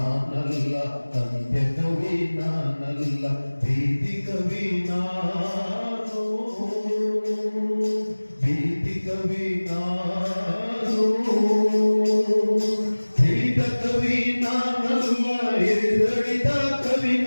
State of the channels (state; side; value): inverted; both; correlation -1.00